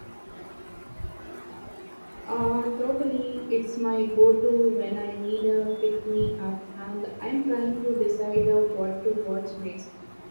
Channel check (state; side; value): inverted; both; correlation -1.00